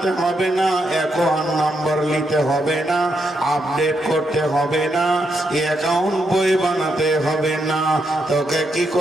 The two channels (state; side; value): normal; both; correlation 0.80